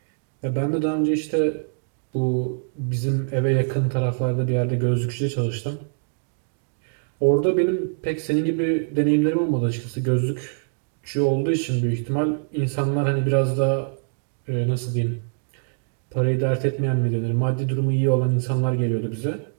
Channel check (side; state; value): left; silent; digital silence